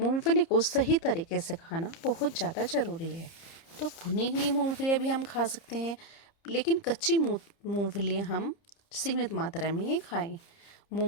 को सही तरीके से खाना बहुत ज़्यादा ज़रूरी है। तो भुनी हुई मूंगफलियाँ भी हम खा सकते हैं, लेकिन कच्ची मूंगफलियाँ हम सीमित मात्रा में ही खाएं।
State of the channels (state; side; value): late; right; 30 ms